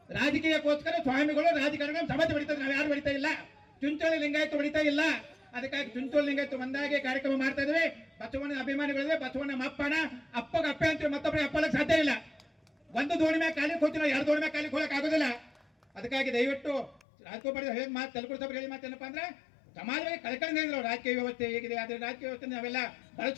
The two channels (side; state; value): right; drops out; at 17.1 s